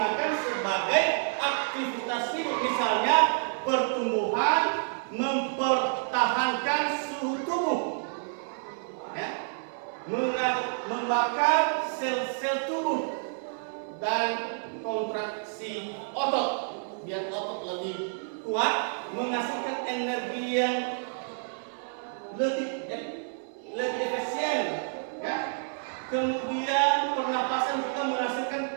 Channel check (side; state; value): left; silent; 58 dB below the other